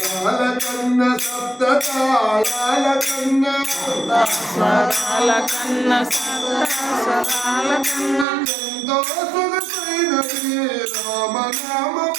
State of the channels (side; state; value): left; drops out; at 8.2 s